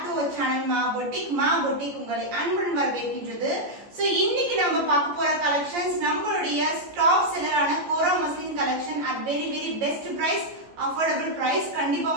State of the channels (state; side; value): late; left; 14 ms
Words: to our channel Maa boutique உங்களை அன்புடன் வரவேற்கின்றது. சோ இன்னைக்கு நம்ம பார்க்க போற கலெக்ஷன்ஸ் நம்மளுடைய டாப் செல்லரான kora muslin collection at very best price, affordable price. கண்டிப்பா